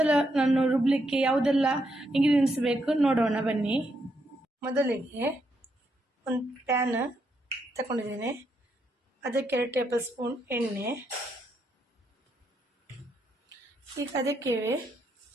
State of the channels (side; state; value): both; normal; correlation 0.78